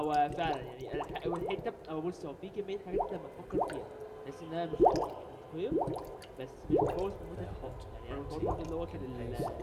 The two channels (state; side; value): identical; both; correlation 1.00